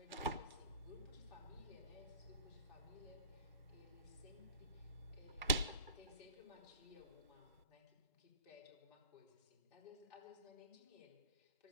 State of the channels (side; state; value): both; inverted; correlation -0.46